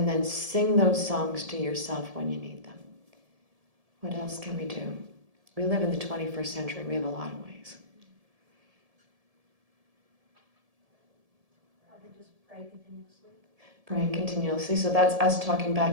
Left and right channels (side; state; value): left; late; 1.7 ms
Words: then sing those songs to yourself when you need them. What else can we do? We live in the 21st century. We have a lot of ways. Just pray continuously. Praying continuously. So that's us talking